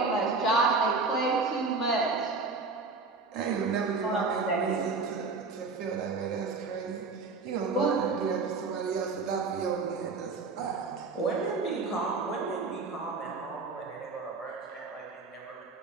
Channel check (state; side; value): quieter; left; 4.2 dB